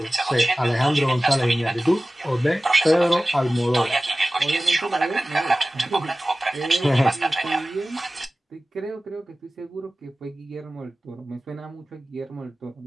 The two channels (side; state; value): both; normal; correlation 0.97